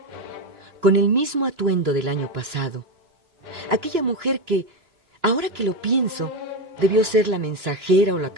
con el mismo atuendo del año pasado, aquella mujer que, ahora que lo pienso, debió ser la mensajera o la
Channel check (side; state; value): left; late; 3.0 ms